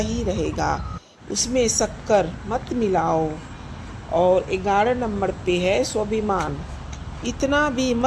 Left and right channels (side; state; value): both; identical; correlation 1.00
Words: रहेगा, उसमें शक्कर मत मिलाओ। और 11 नंबर पे है स्वाभिमान। इतना भी